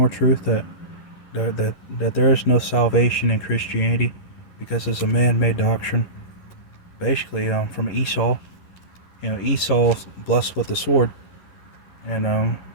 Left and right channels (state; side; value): late; right; 11 ms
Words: truth that there is no salvation in Christianity because it's a man-made doctrine. Basically, from Esau. Esau's blessed with the sword, and